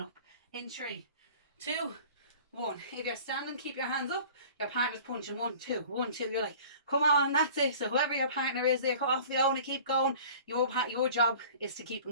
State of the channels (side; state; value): both; inverted; correlation -0.45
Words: In 3, 2, 1. If you're standing, keep your hands up. Your partner's punching 1, 2, 1, 2. You're like, come on, that's it. So whoever your partner is, they're off going to keep going. Your job is to keep